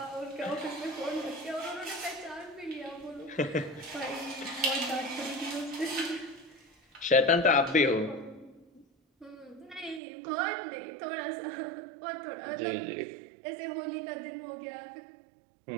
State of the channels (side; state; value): left; drops out; at 10.0 s